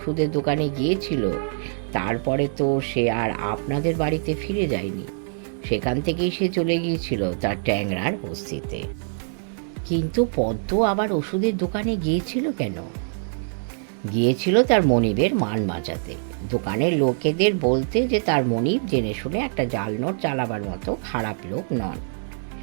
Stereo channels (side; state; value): left; silent; digital silence